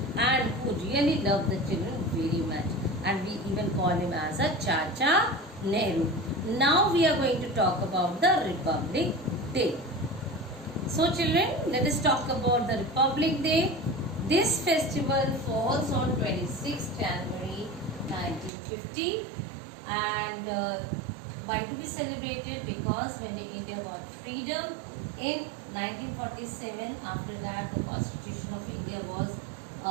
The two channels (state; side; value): drops out; left; at 18.5 s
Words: and who really loved the children very much. And we even call him as a Chacha Nehru. Now we are going to talk about the Republic Day. So children, let us talk about the Republic Day. This festival falls on 26th January 1950, and why to be celebrated? Because when India got freedom in 1947, after that the Constitution of India was